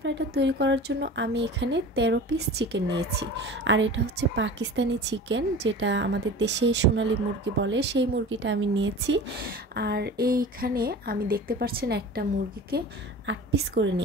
তৈরি করার জন্য আমি এখানে 13 পিস চিকেন নিয়েছি। আর এটা হচ্ছে পাকিস্তানি চিকেন, যেটা আমাদের দেশে সোনালী মুরগি বলে, সেই মুরগিটা আমি নিয়েছি। আর এইখানে আমি দেখতে পাচ্ছেন একটা মুরগিকে 8 পিস করে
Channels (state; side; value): normal; both; correlation 0.37